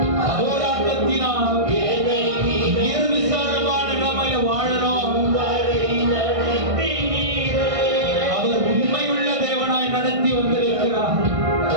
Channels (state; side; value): late; left; 1.6 ms